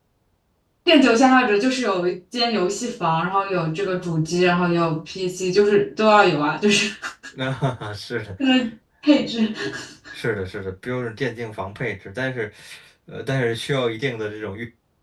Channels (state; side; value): identical; both; correlation 1.00